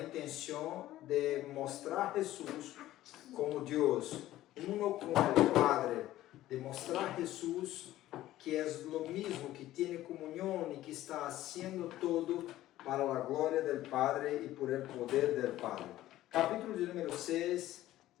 intenção de mostrar Jesus como Deus, uno com o Padre, de mostrar Jesus que é o mesmo, que tem comunhão e que está fazendo todo para a glória do Padre e por el poder do Padre. Capítulo de número 6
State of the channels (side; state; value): right; quieter; 14.7 dB